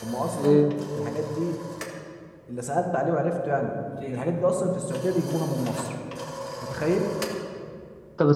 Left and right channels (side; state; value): both; identical; correlation 1.00